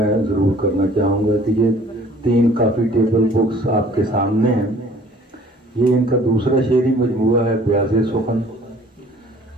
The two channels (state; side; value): normal; both; correlation 0.53